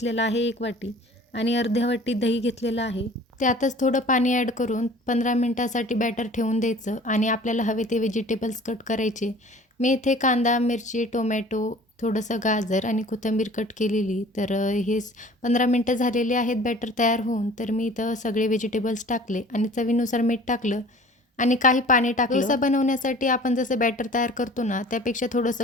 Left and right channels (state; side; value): normal; both; correlation 0.47